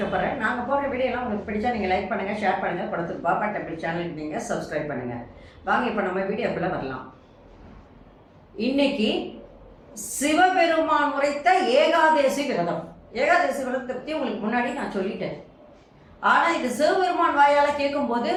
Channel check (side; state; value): both; identical; correlation 1.00